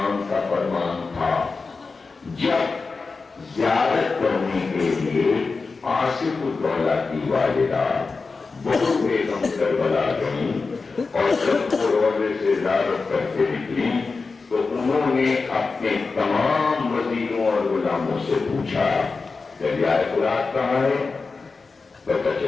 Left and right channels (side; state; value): right; quieter; 4.3 dB